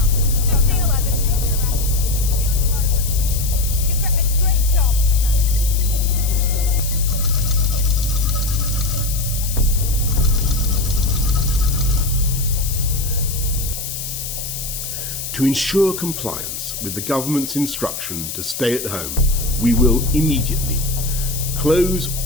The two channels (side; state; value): left; noise; hiss, 6 dB below the sound